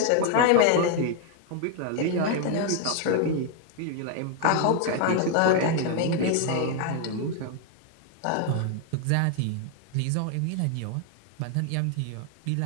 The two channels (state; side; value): different; both; correlation 0.00